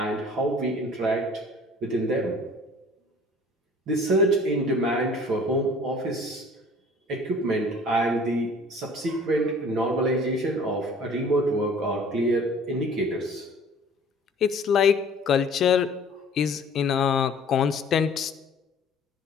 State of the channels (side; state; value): both; normal; correlation 0.49